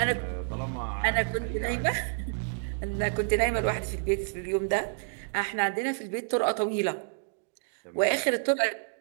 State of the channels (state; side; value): silent; left; digital silence